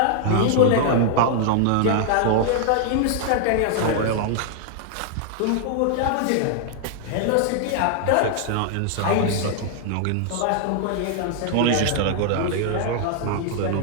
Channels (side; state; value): both; different; correlation 0.00